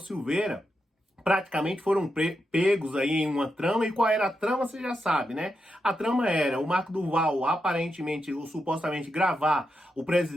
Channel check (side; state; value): both; normal; correlation 0.86